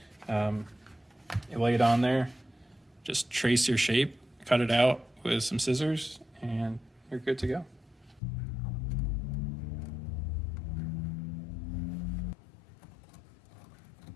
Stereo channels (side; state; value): right; drops out; at 8.2 s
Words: you lay it on there, just trace your shape, cut it out with some scissors, and you're good to go.